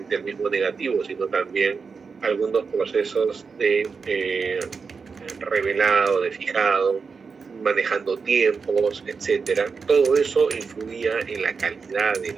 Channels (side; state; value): left; quieter; 5.2 dB